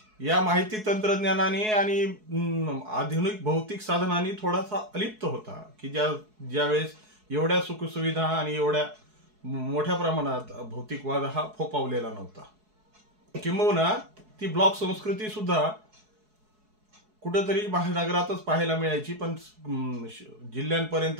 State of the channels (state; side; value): late; left; 4.7 ms